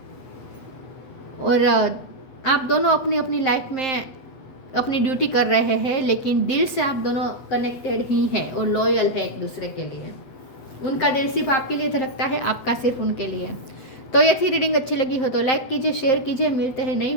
और आप दोनों अपनी अपनी लाइफ में अपनी ड्यूटी कर रहे हैं लेकिन दिल से आप दोनों कनेक्टेड ही हैं और लॉयल है एक दूसरे के लिए। उनका दिल सिर्फ आपके लिए धड़कता है, आपका सिर्फ उनके लिए। तो ये थी रीडिंग, अच्छी लगी हो तो लाइक कीजिए, शेयर कीजिए। मिलते हैं नई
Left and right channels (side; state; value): right; late; 8.1 ms